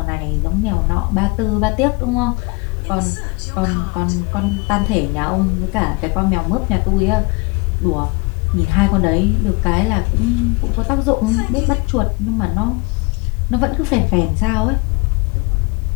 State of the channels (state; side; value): quieter; right; 27.9 dB